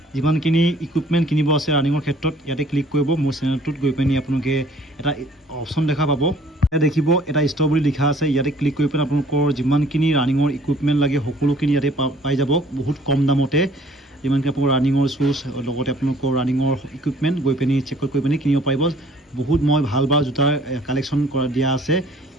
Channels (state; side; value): normal; both; correlation 0.56